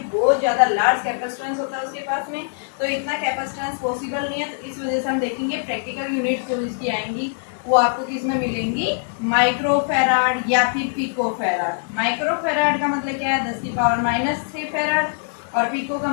बहुत ज्यादा लार्ज कैपेसिटेंस होता है उसके पास में। तो इतना कैपेसिटेंस पॉसिबल नहीं है, तो इस वजह से हम देखेंगे प्रैक्टिकल यूनिट जो इसकी आएंगी वो आपको किस में मिलेंगी, माइक्रो फैराड या फिर पिको फैराड। माइक्रो फैराड का मतलब क्या है, 10 की पावर माइनस 6 फैराड, और पिको का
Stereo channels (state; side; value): silent; right; digital silence